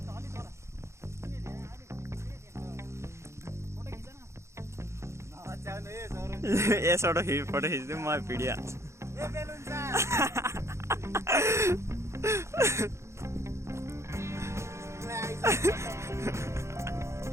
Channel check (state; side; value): late; left; 0.14 ms